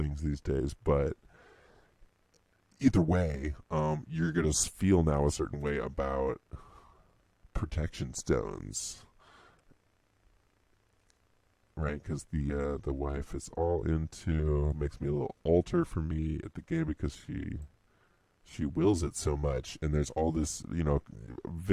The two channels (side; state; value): both; identical; correlation 1.00